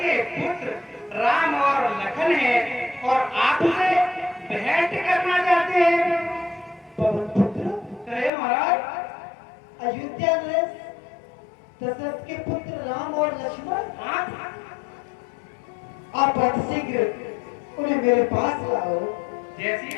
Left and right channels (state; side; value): drops out; right; at 8.3 s